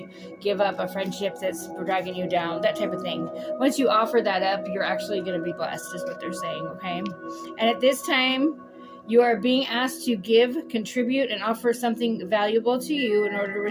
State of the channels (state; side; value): identical; both; correlation 1.00